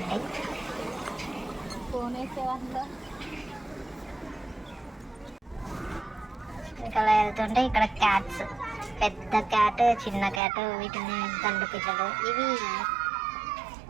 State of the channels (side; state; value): left; drops out; at 10.4 s